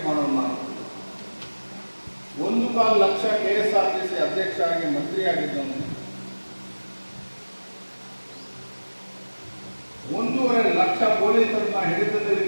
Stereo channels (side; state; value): both; inverted; correlation -1.00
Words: ಮಾಡೋನು ನಾನು. 1.25 ಲಕ್ಷ KSRTC ಅಧ್ಯಕ್ಷ ಆಗಿ ಮಂತ್ರಿ ಆಗಿದ್ದವನು. 1.5 ಲಕ್ಷ ಪೊಲೀಸರನ್ನ ಹಿಡಿತದಲ್ಲಿ